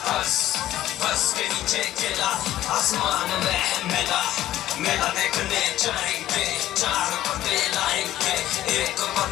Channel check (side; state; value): right; quieter; 13.8 dB